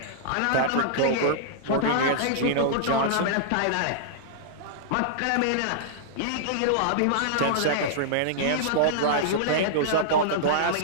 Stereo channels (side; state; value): both; different; correlation -0.02